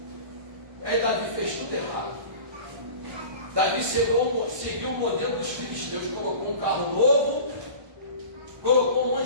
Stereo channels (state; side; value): late; left; 1.1 ms